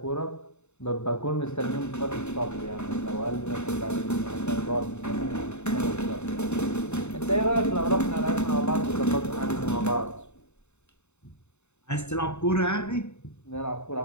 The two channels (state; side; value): late; right; 0.82 ms